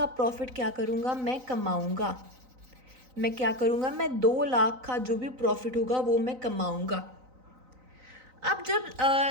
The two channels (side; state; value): left; late; 3.9 ms